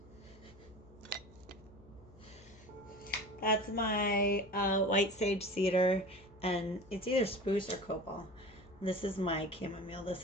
That's my white sage cedar, and it's either spruce or copal. This is my chamomile.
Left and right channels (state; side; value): noise; left; hum, 24 dB below the sound